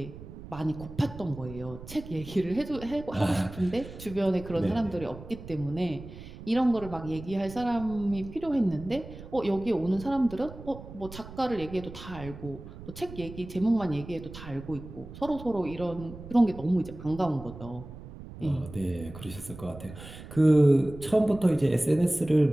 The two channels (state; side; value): noise; right; rumble, 14 dB below the sound